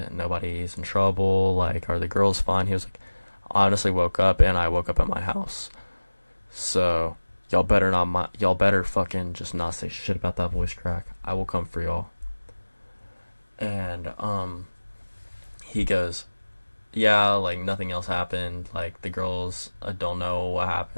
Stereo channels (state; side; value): inverted; both; correlation -1.00